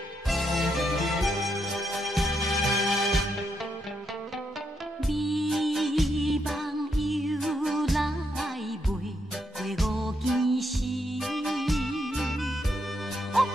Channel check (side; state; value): both; normal; correlation 0.79